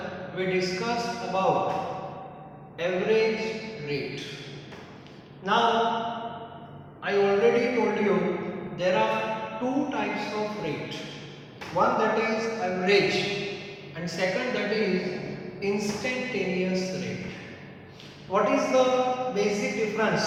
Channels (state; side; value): identical; both; correlation 1.00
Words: we discussed about average rate. Now I already told you there are two types of rate. One that is average and second that is instantaneous rate. What is the basic difference